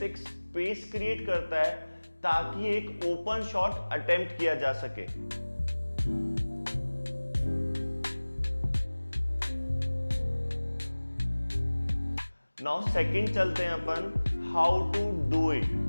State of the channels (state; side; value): inverted; both; correlation -1.00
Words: एक स्पेस क्रिएट करता है ताकि एक ओपन शॉट अटेम्प्ट किया जा सके। नाउ सेकंड चलते हैं अपन how to do it.